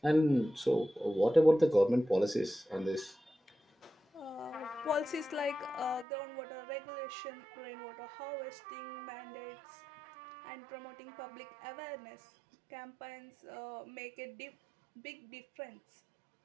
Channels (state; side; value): drops out; left; at 6.1 s